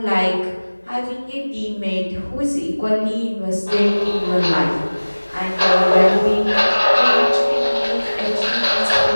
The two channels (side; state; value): both; inverted; correlation -1.00